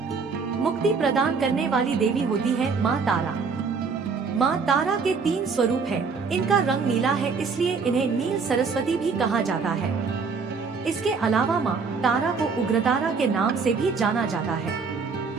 मुक्ति प्रदान करने वाली देवी होती है माँ तारा। माँ तारा के 3 स्वरूप हैं। इनका रंग नीला है, इसलिए इन्हें नील सरस्वती भी कहा जाता है। इसके अलावा माँ तारा को उग्रतारा के नाम से भी जाना जाता है।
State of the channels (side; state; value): left; quieter; 5.1 dB